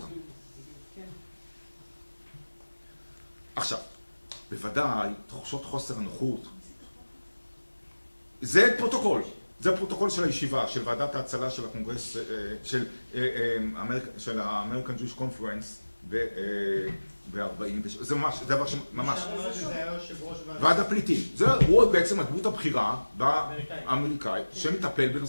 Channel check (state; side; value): inverted; both; correlation -1.00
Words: עכשיו, בוודאי, תחושות חוסר הנוחות. זה פרוטוקול של הישיבה, של ועדת ההצלה של הקונגרס, של ה-American Jewish Conference זה ממש, זה דבר שממש... זה היה יושב ראש ועד הפליטים. הוא בעצם הדמות הבכירה האמריקאית שמטפל